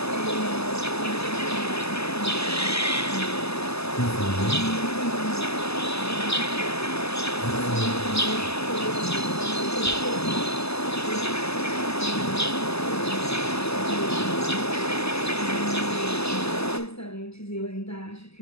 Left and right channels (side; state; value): right; late; 0.79 ms